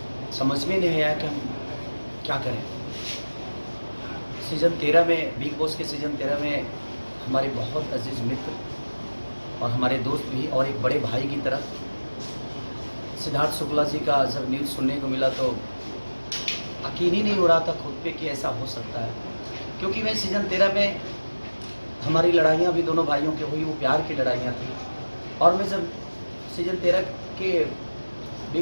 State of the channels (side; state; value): both; inverted; correlation -1.00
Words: समझ में नहीं आया कि हम क्या करें। सीज़न 13 में, बिग बॉस के सीज़न 13 में हमारे बहुत अजीज़ मित्र और हमारे दोस्त भी और एक बड़े भाई की तरह सिद्धार्थ शुक्ला जी का जब न्यूज़ सुनने को मिला तो यकीन ही नहीं हो रहा था खुद पे कि ऐसा हो सकता है। क्योंकि मैं सीज़न 13 में हमारी लड़ाइयाँ भी दोनों भाइयों की हुई, वो प्यार की लड़ाइयाँ थी। और मैं जब सीज़न 13 के